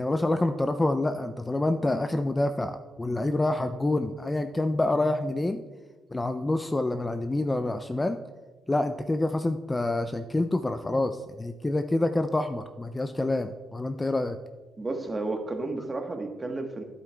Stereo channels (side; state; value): both; normal; correlation 0.94